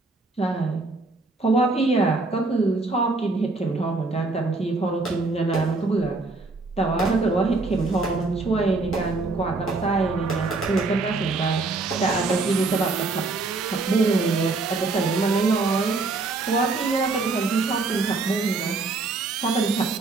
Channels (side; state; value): left; quieter; 3.6 dB